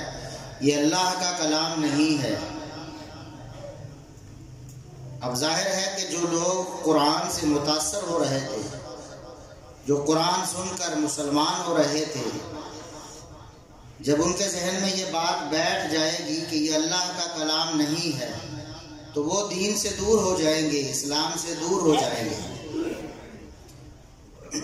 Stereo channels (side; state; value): both; identical; correlation 1.00